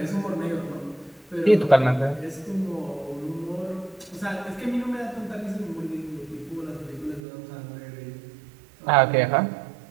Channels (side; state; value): left; drops out; at 7.2 s